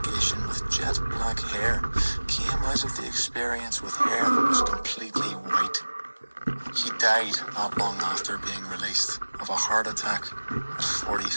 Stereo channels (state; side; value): inverted; both; correlation -1.00